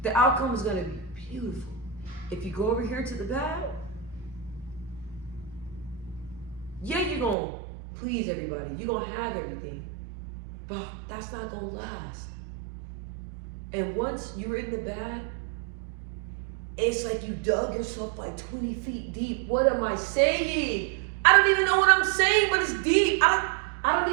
The outcome is going to be beautiful. If you go over here to the bad, yeah, you're going to please everybody. You're going to have everything. But that's not going to last. And once you're in the bad, it's like you dug yourself like 20 feet deep. What am I saying? I don't even know what I'm saying, but it's deep. I don't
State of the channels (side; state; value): left; drops out; at 7.4 s